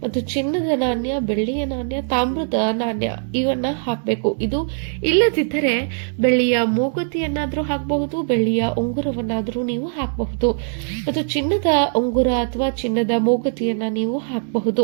ಮತ್ತು ಚಿನ್ನದ ನಾಣ್ಯ, ಬೆಳ್ಳಿಯ ನಾಣ್ಯ, ತಾಮ್ರದ ನಾಣ್ಯ ಇವನ್ನ ಹಾಕಬೇಕು. ಇದು ಇಲ್ಲದಿದ್ದರೆ ಬೆಳ್ಳಿಯ ಮೂಗುತಿಯನ್ನಾದ್ರೂ ಹಾಕಬಹುದು, ಬೆಳ್ಳಿಯ ಉಂಗುರವನ್ನಾದ್ರೂ ನೀವು ಹಾಕಬಹುದು ಮತ್ತು ಚಿನ್ನದ ಉಂಗುರ ಅಥವಾ ಚಿನ್ನದ ಮೂಗುತಿಯನ್ನ ನೀವು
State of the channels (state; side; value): silent; left; digital silence